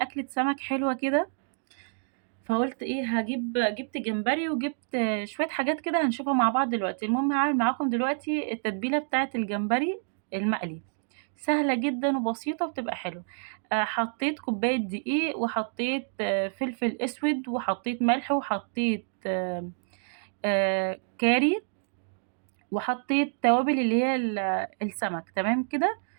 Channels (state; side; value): silent; left; digital silence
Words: سمك حلوة كده، فقُلت إيه، جِبت جمبري وجِبت شوية حاجات كده هنشوفها مع بعض دلوقتي. المهم هاعمل معاكم دلوقتي التتبيلة بتاعة الجمبري المقلي، سهلة جدًا وبسيطة وبتبقى حلوة. حطيت كوباية دقيق، وحطيت فلفل أسود، وحطيت ملح، وحطيت كاري، وحطيت توابل اللي هي السمك، تمام كده.